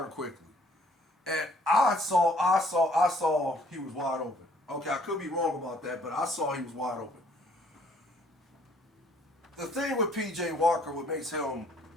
quickly. And I saw he was wide open. Okay, I could be wrong about that, but I saw he was wide open. The thing with P.J. Walker, what makes him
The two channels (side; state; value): both; normal; correlation 0.62